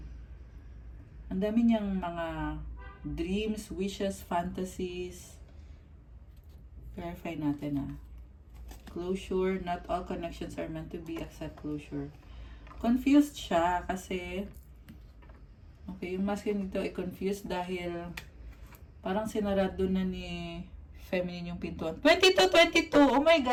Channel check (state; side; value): identical; both; correlation 1.00